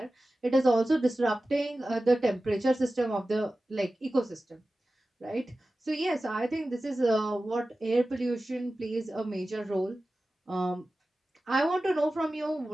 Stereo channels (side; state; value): both; normal; correlation 0.95